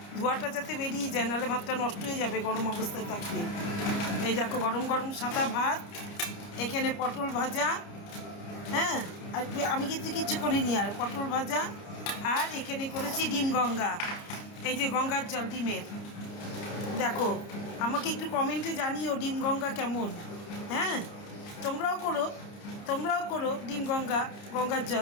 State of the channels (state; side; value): late; right; 30 ms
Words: ধোয়াটা যাতে বেরিয়ে যায়, নাহলে ভাতটা নষ্ট হয়ে যাবে গরম অবস্থায় থাকলে। এই দেখো গরম গরম সাদা ভাত, এখানে পটল ভাজা। হ্যাঁ, আর আমি কিন্তু কিচ্ছু করিনি, আর পটল ভাজা। আর এখানে করেছি ডিম গঙ্গা, এই যে গঙ্গার জল ডিমের। দেখো, আমাকে একটু কমেন্টে জানিও ডিম গঙ্গা কেমন। হ্যাঁ, তোমরাও করো ডিম গঙ্গার